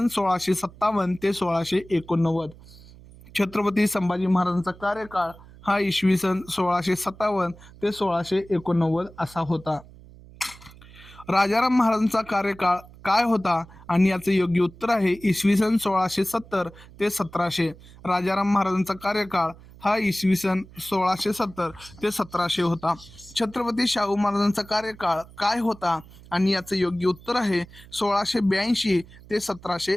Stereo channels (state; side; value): noise; right; hum, 21 dB below the sound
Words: 1657 ते 1689. छत्रपती संभाजी महाराजांचा कार्यकाळ हा इसवी सन 1657 ते 1689 असा होता. राजाराम महाराजांचा कार्यकाळ काय होता? आणि याचं योग्य उत्तर आहे, इसवी सन 1670 ते 1700. राजाराम महाराजांचा कार्यकाळ हा इसवी सन 1670 ते 1700 होता. छत्रपती शाहू महाराजांचा कार्यकाळ काय होता? आणि याचं योग्य उत्तर आहे, 1682 ते